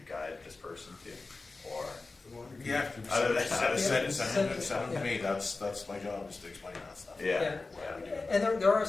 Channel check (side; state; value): right; quieter; 3.6 dB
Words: guide this person to? Or, Yeah, Other than that, send it to me. That's my job, is to explain that stuff. Yeah. Why we do it. And there